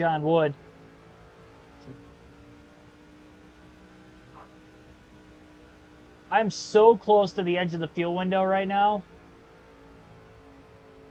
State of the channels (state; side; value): identical; both; correlation 1.00